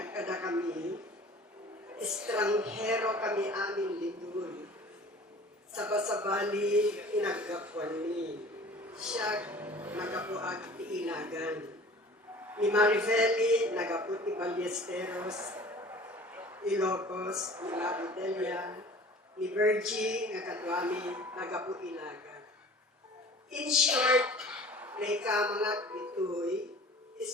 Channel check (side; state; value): both; normal; correlation 0.45